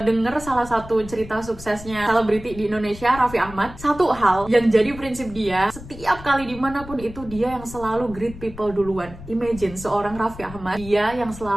denger salah satu cerita suksesnya selebriti di Indonesia, Raffi Ahmad. Satu hal yang jadi prinsip dia, setiap kali dimanapun itu dia yang selalu greet people duluan. Imagine seorang Raffi Ahmad, dia yang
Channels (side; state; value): left; noise; rumble, 15 dB below the sound